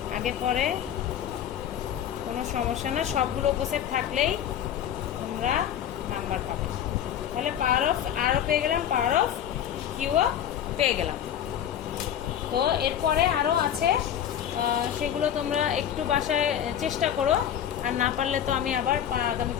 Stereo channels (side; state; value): right; quieter; 10.0 dB